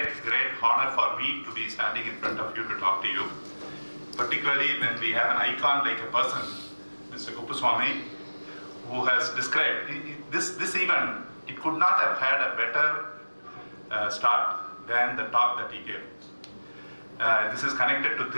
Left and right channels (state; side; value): inverted; both; correlation -1.00